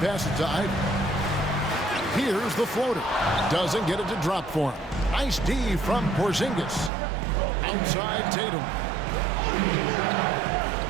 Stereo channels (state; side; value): drops out; left; at 6.9 s